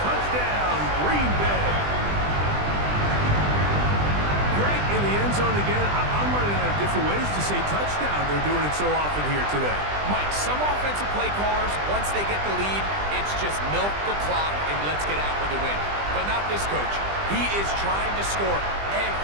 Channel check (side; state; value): left; late; 20 ms